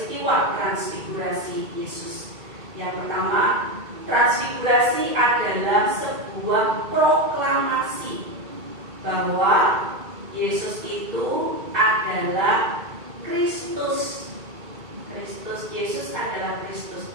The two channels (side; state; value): left; late; 2.3 ms